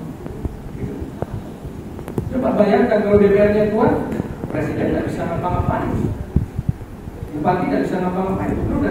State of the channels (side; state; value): both; identical; correlation 1.00